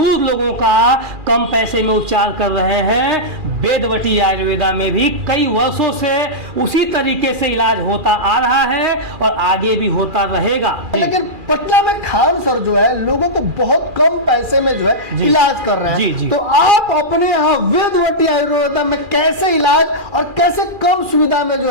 लोगों का कम पैसे में उपचार कर रहे हैं, वेदवती आयुर्वेदा में भी कई वर्षों से उसी तरीके से इलाज होता आ रहा है और आगे भी होता रहेगा। लेकिन पटना में खान सर जो है लोगों को बहुत कम पैसे में जो है इलाज कर रहे हैं। जी, जी। तो आप अपने यहाँ वेदवती आयुर्वेदा में कैसे इलाज और कैसे कम सुविधा में जो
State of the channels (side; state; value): left; late; 2.4 ms